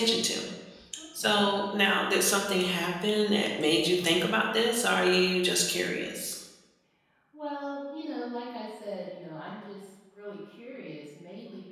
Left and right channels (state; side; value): identical; both; correlation 1.00